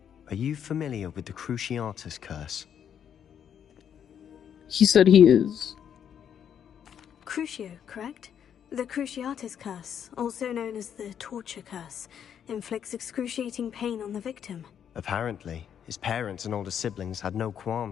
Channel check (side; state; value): right; quieter; 8.7 dB